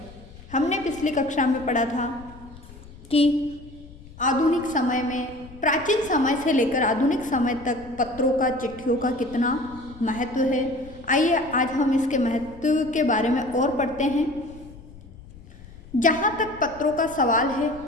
हमने पिछली कक्षा में पढ़ा था कि आधुनिक समय में, प्राचीन समय से लेकर आधुनिक समय तक पत्रों का, चिट्ठियों का कितना महत्व है। आइए आज हम इसके महत्व के बारे में और पढ़ते हैं। जहाँ तक पत्रों का सवाल है,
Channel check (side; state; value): left; noise; rumble, 19 dB below the sound